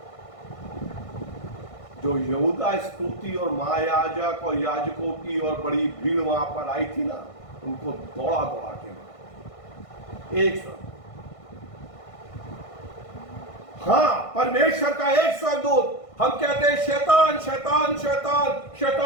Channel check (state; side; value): late; right; 1.5 ms